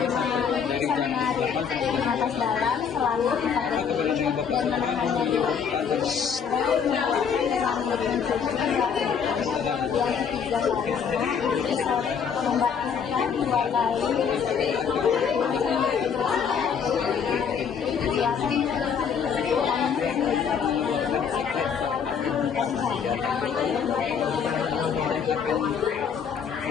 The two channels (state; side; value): quieter; right; 6.9 dB